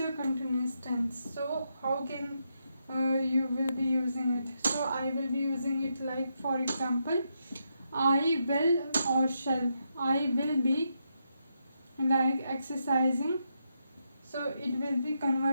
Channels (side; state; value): both; inverted; correlation -0.82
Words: continuous tense. So how can you will be using it? So I will be using it like, for example, I will or shall. I will be like exercising. So it will be